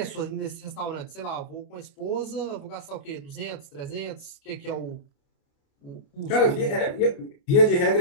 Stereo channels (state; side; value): late; right; 29 ms